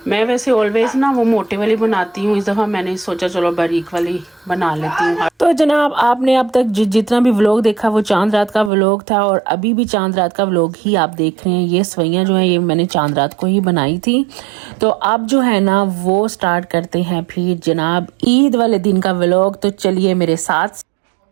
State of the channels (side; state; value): left; drops out; at 8.7 s